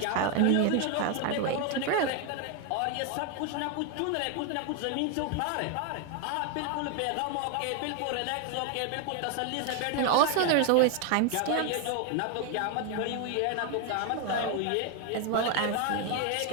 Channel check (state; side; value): different; both; correlation 0.01